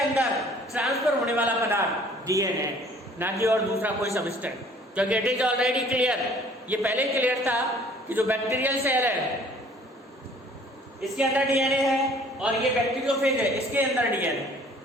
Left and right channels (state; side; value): normal; both; correlation 0.55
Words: ट्रांसफर होने वाला पदार्थ डीएनए, ना कि और दूसरा कोई सबस्टेंस, क्योंकि इट इज ऑलरेडी क्लियर, ये पहले ही क्लियर था कि जो बैक्टीरियल सेल है इसके अंदर डीएनए है और ये बैक्टीरियोफेज है इसके अंदर डीएनए,